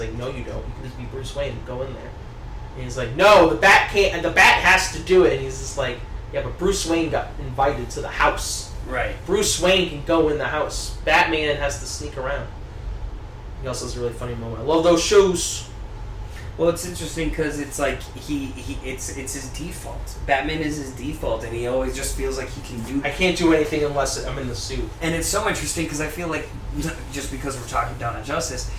no you don't, you can just be Bruce Wayne, go in there. And he's like, no, the Bat can't, and the Bat has to do it, and he's just like, yeah, but Bruce Wayne got invited to the house. Right. Bruce Wayne can go in the house. Batman has to sneak around. He also has a really funny moment. I love those shoes. Well, it's interesting because it's like it's his default. Batman is his default, and he always just feels like he can do. I can't do anything unless I'm in the suit. And it's so interesting because I feel like, just because we're talking Dawn of Justice,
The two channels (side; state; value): both; identical; correlation 1.00